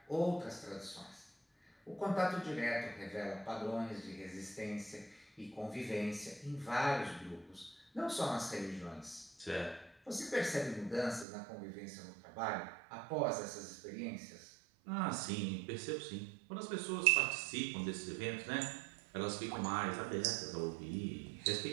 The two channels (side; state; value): left; drops out; at 11.2 s